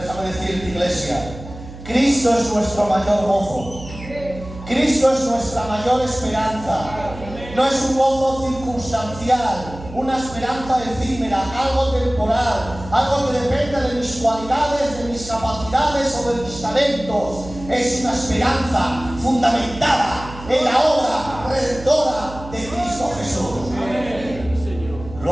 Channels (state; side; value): noise; right; hum, 14 dB below the sound